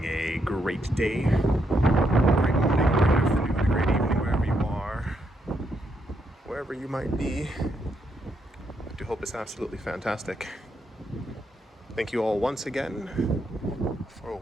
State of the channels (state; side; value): normal; both; correlation 0.78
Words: a great day, great morning, great afternoon, a great evening, wherever you are, wherever you might be. I do hope it's absolutely fantastic. Thank you all once again for